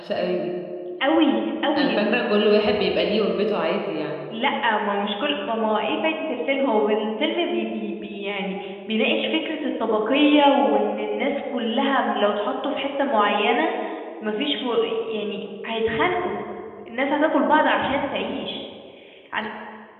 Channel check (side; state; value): both; identical; correlation 1.00